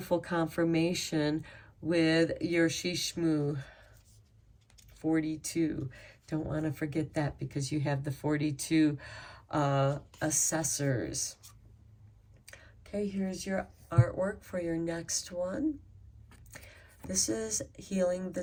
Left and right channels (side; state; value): both; identical; correlation 1.00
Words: confirmation with your Shishmu 42. Don't want to forget that because you have the 42 assessors. Okay, here's your artwork for your next one. This is Healing the